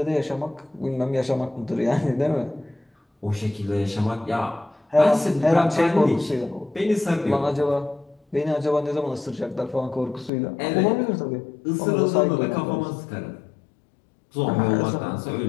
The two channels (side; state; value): right; drops out; at 10.3 s